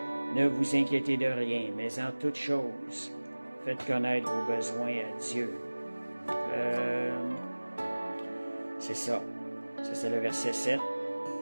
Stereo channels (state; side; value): inverted; both; correlation -1.00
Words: Ne vous inquiétez de rien, mais en toute chose, faites connaître vos besoins à Dieu. C'est ça. Ça, c'est le verset 7.